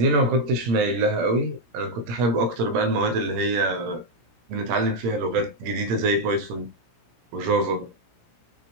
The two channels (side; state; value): left; late; 17 ms